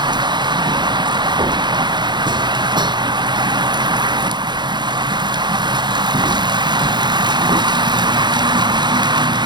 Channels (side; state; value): left; late; 0.21 ms